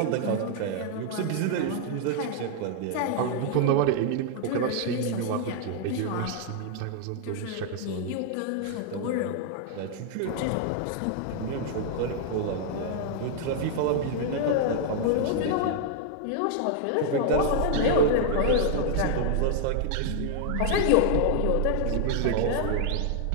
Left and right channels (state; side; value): different; both; correlation -0.01